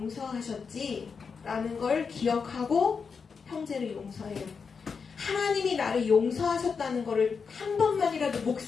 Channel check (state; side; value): quieter; right; 5.6 dB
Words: 라는 걸 기억하고 형제를 용서해요. 하나님이 나를 용서하셨다는 거를 한 번만이라도